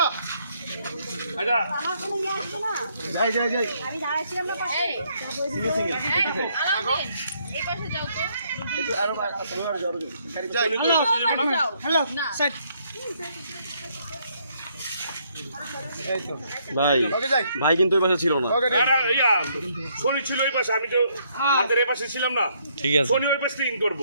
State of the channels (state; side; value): inverted; both; correlation -0.70